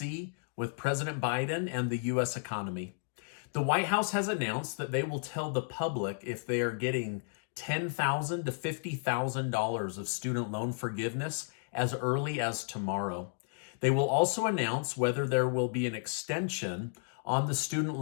with President Biden and the U.S. economy. The White House has announced that they will tell the public if they are getting $10,000 to $50,000 of student loan forgiveness as early as tomorrow. They will also announce whether there will be an extension on the student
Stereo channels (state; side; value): silent; right; digital silence